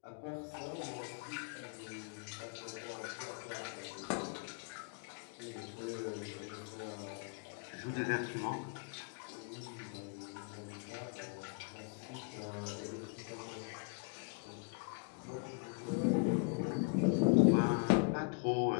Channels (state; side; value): quieter; right; 36.6 dB